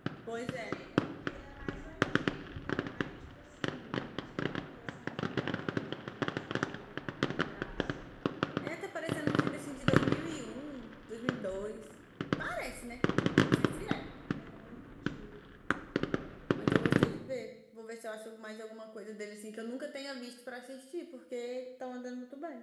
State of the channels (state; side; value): identical; both; correlation 1.00